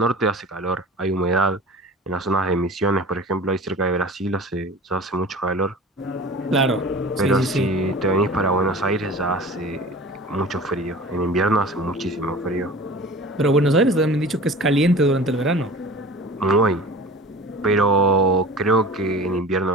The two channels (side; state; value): both; normal; correlation 0.39